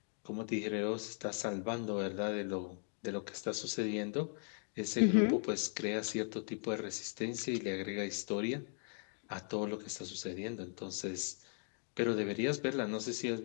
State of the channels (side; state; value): right; silent; 52 dB below the other